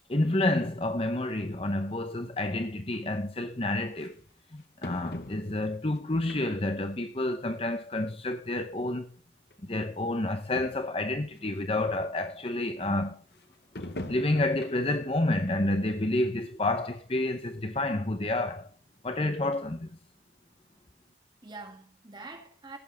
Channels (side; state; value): both; normal; correlation 0.60